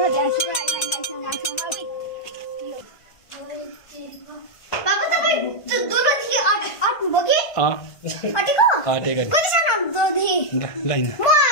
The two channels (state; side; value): late; right; 1.5 ms